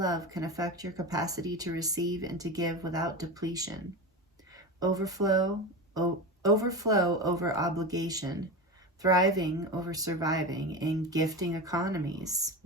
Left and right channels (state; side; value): normal; both; correlation 0.24